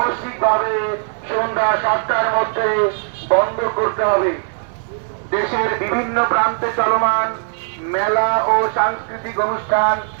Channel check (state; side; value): silent; left; digital silence